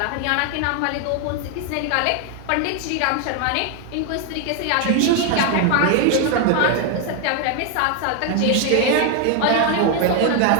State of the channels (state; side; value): different; both; correlation 0.01